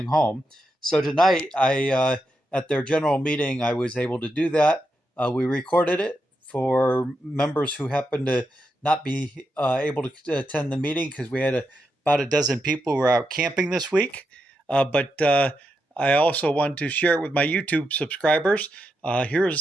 home. So tonight, at their general meeting, I was able to do that. We recorded it for members who happened to not be able to attend the meeting because we had about a dozen people who were out camping this week. But I also want to share it with my YouTube subscribers.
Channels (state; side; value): normal; both; correlation 0.85